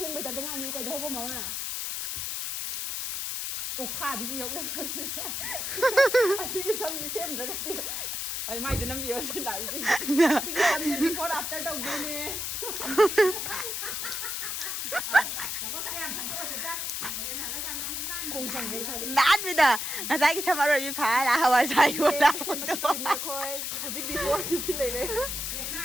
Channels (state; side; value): noise; left; hiss, 3 dB below the sound